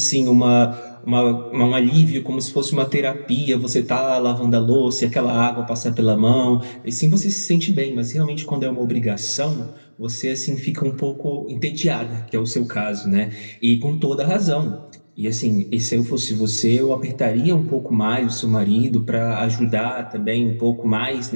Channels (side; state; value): both; inverted; correlation -1.00